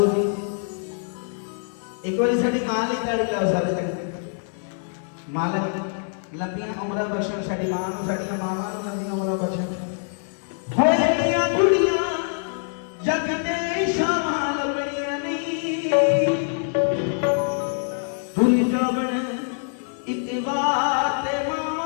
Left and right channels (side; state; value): right; silent; digital silence